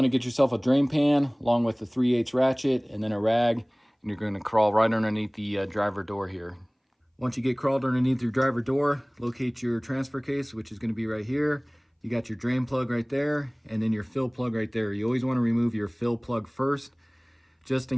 to get yourself a drain pan along with a 3/8 ratchet and then a rag, and you're going to crawl right underneath the driver door here. Once you get crawled underneath your driver door, locate your transfer case, which is going to be right here. You got your drain plug right there and then your fill plug right there. You always want to remove your fill plug first, just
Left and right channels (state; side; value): identical; both; correlation 1.00